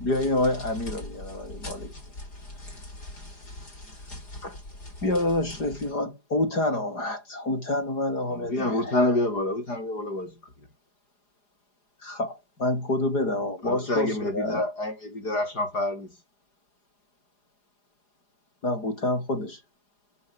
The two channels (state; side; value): late; right; 4.9 ms